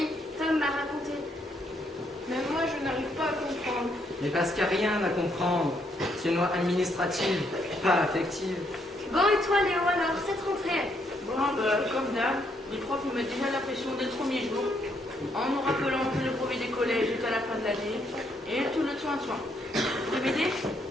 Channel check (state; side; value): normal; both; correlation 0.73